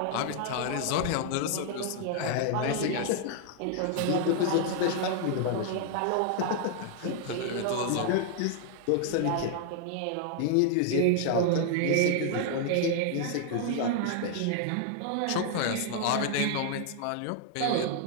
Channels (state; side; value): different; both; correlation 0.00